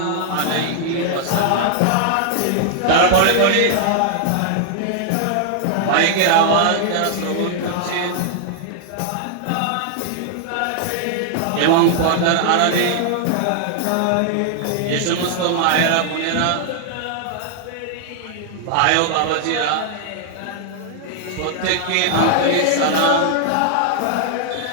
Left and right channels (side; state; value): both; different; correlation 0.00